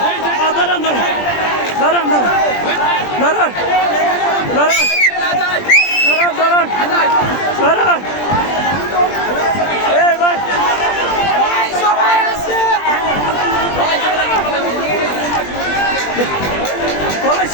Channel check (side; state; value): right; late; 20 ms